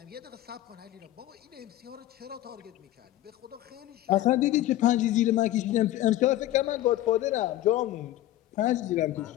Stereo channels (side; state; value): right; quieter; 14.6 dB